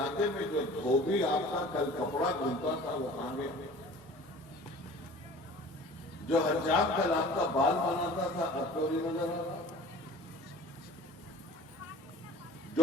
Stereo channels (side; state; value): both; normal; correlation 0.45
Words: میں جو دھوبی آپ کا کل کپڑا دھلتا تھا وہ کہاں گیا؟ جو حجام کل آپ کا بال بناتا تھا اب تو نہیں نظر آ رہا. جو